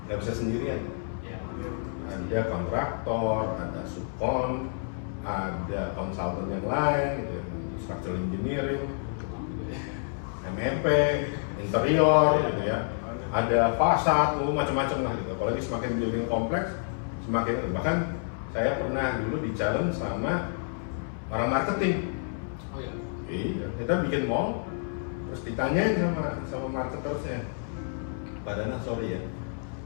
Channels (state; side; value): silent; right; 59 dB below the other